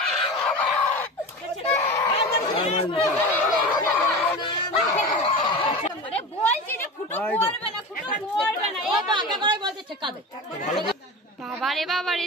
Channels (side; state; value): both; normal; correlation 0.29